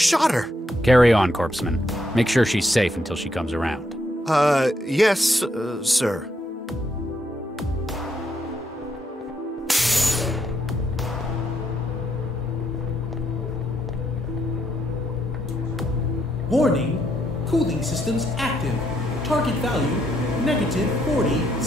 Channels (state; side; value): normal; both; correlation 0.75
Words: her! Carry on, Corpseman. Make sure she's safe until she comes around. Yes, sir. Warning, cooling systems active. Target value, -40